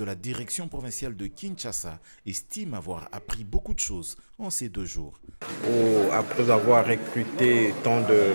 la direction provinciale de Kinshasa, estime avoir appris beaucoup de choses en ces 2 jours. Après avoir recruté tant de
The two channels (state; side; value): inverted; both; correlation -1.00